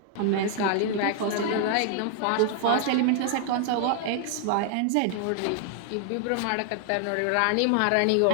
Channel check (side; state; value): both; different; correlation 0.00